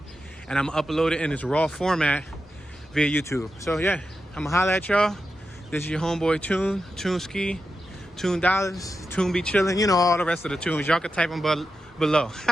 and I'm gonna upload it in its raw format via YouTube. So yeah, I'm gonna holla at y'all. This is your homeboy Toon, Toonski, Toon Dollars, Toon Be Chillin'. You know all the rest of the tunes. Y'all can type them below.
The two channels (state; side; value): normal; both; correlation 0.89